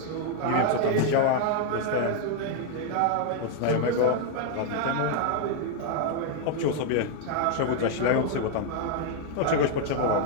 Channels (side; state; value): both; different; correlation 0.00